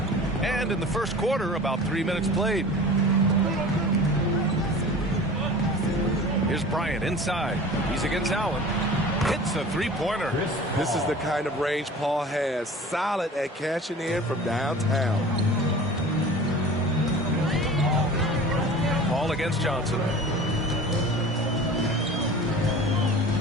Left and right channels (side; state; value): both; normal; correlation 0.40